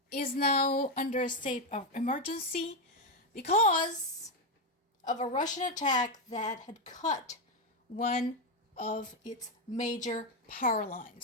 is now under a state of emergency because of a Russian attack that had cut one of its major power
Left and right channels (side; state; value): both; normal; correlation 0.07